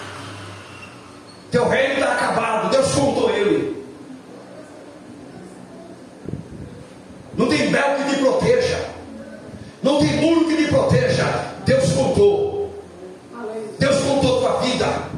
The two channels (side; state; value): both; identical; correlation 1.00